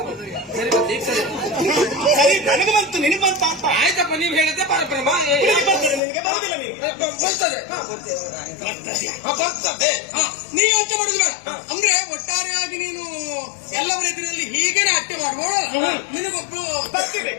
ಸರಿ ನನಗೆ ಬಂತು ನಿನಗೆ ಬಂತ ಅಂತ ಆಯ್ತಪ್ಪ. ನೀವು ಹೇಳಿದ್ದೆ ಪರಬ್ರಹ್ಮ ಬರ್ತದೆ ನಿನಗೆ ಬರುದಿಲ್ಲ. ನಿನಗೆ ಬರ್ತದೆ. ನೀವು ಯೋಚನೆ ಮಾಡುದು ಬೇಡ. ಅಂದ್ರೆ ಒಟ್ಟಾರೆಯಾಗಿ ನೀನು ಎಲ್ಲವರ ಎದುರಲ್ಲಿ ಹೀಗೇನೆ ಅಟ್ಟೆ ಮಾಡುವಳು. ನಿನಗೊಬ್ರು ಬರ್ತಿದೆ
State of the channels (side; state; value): right; drops out; at 6.0 s